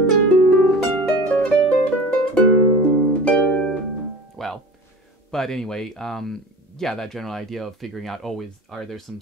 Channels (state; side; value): normal; both; correlation 0.38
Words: But anyway, yeah, that general idea of figuring out, are there some